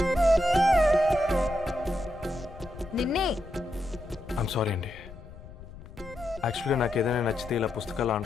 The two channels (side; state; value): left; noise; rumble, 17 dB below the sound